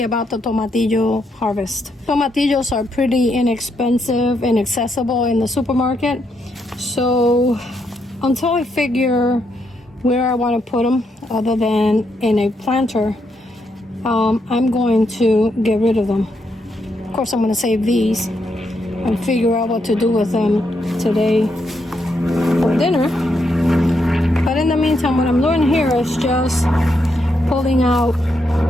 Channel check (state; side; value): normal; both; correlation 0.79